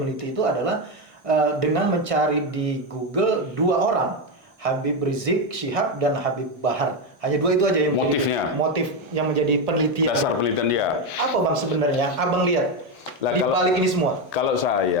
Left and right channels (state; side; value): normal; both; correlation 0.09